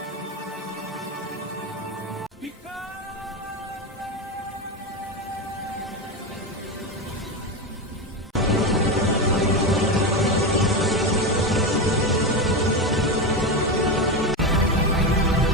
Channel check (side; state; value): both; normal; correlation 0.15